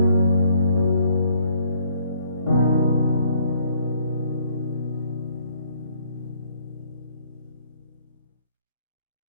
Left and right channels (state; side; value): inverted; both; correlation -0.64